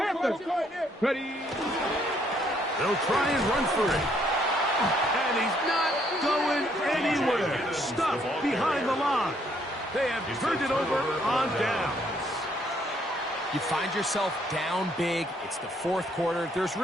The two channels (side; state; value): both; normal; correlation 0.68